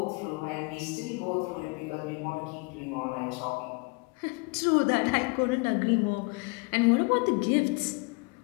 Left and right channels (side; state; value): right; quieter; 29.1 dB